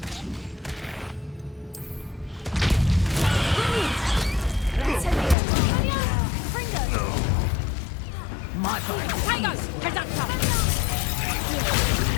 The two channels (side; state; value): right; drops out; at 5.4 s